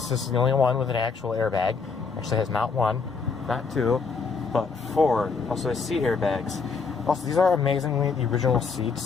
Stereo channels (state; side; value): quieter; right; 5.0 dB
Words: the only one with an actual airbag. Actually has not one, not two, but 4. Also has seat airbags. Also, these are amazingly the original